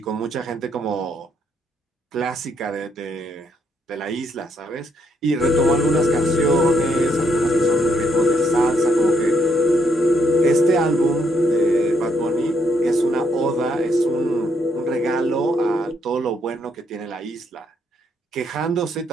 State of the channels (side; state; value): both; normal; correlation 0.73